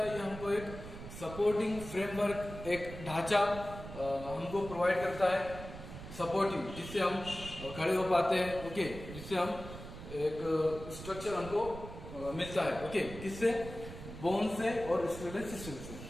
ये हमको एक सपोर्टिंग फ्रेमवर्क, एक ढांचा हमको प्रोवाइड करता है, सपोर्टिव, जिससे हम खड़े हो पाते हैं। ओके, जिससे हम एक स्ट्रक्चर हमको मिलता है। ओके, किससे, बोन से और स्केलेटल सिस्टम से।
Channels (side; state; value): right; noise; rumble, 11 dB below the sound